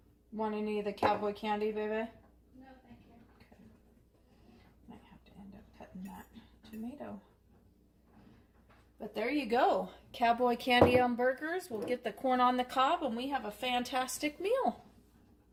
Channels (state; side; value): identical; both; correlation 1.00